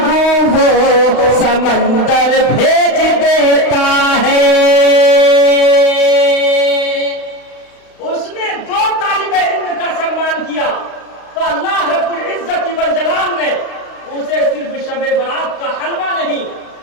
वो समंदर भेज देता है। उसने 2 तालिबे इल्म का सम्मान किया तो अल्लाह रब्बुल इज्जत वल जलाल ने उसे सिर्फ शबे बरात का हलवा नहीं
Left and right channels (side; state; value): right; late; 35 ms